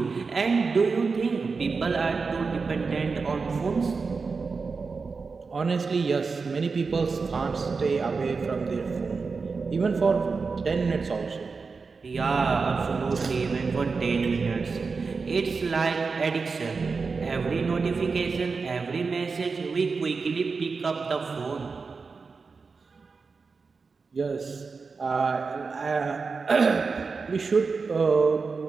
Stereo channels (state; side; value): quieter; left; 4.7 dB